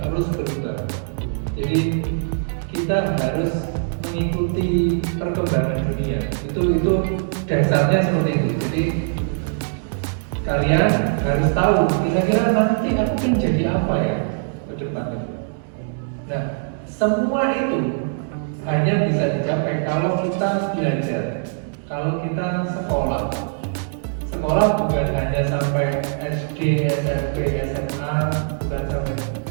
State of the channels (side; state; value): left; silent; 63 dB below the other